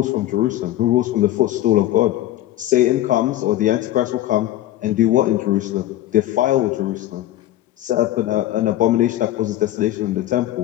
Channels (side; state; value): right; quieter; 14.2 dB